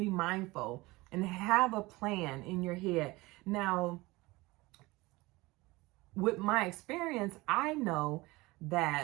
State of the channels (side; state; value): left; quieter; 21.4 dB